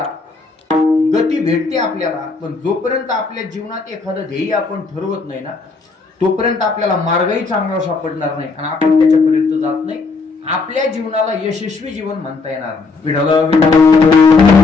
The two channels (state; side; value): quieter; right; 4.1 dB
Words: गती भेटते आपल्याला, पण जोपर्यंत आपल्या जीवनात एखादं ध्येय आपण ठरवत नाही ना तोपर्यंत आपल्याला मार्गही चांगला सापडणार नाही आणि आपण त्याच्यापर्यंत जात नाही. आपल्या जीवनाला यशस्वी जीवन म्हणता येणार नाही.